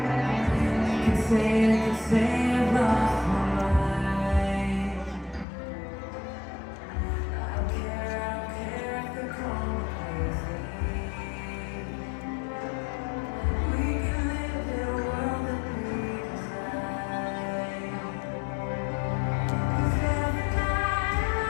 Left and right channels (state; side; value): drops out; right; at 5.5 s